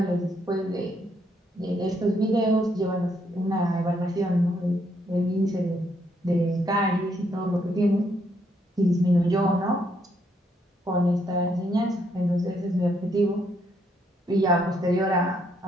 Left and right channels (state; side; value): normal; both; correlation 0.73